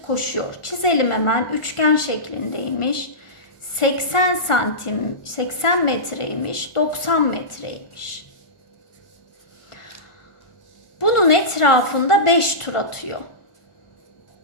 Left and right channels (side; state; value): right; late; 1.4 ms